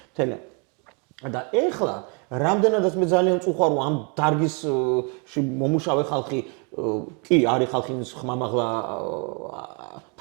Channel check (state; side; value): quieter; left; 35.4 dB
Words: თელა. და ეხლა რამდენადაც მე ძალიან წუხარ რომ ამ დარგისში მომუშავე ხალხი კი არის ხალხი ხმამაღლა